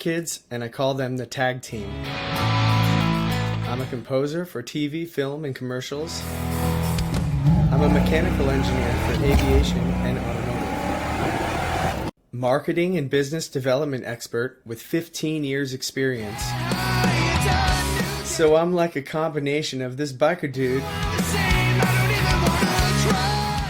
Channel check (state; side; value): identical; both; correlation 1.00